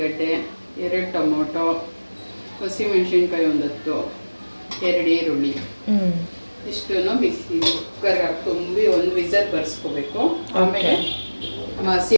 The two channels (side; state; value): both; inverted; correlation -1.00